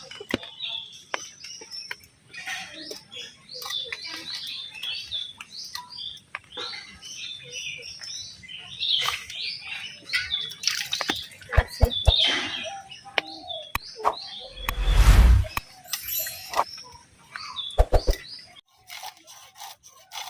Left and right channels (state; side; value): identical; both; correlation 1.00